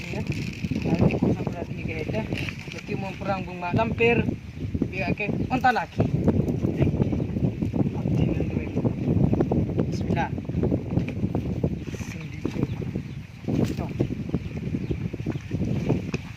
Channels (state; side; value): identical; both; correlation 1.00